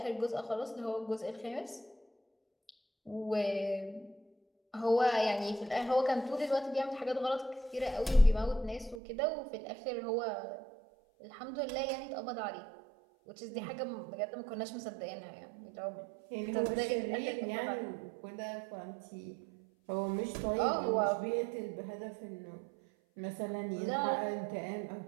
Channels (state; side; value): drops out; left; at 9.0 s